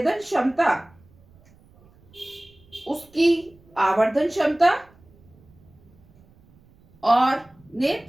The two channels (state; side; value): noise; right; rumble, 29 dB below the sound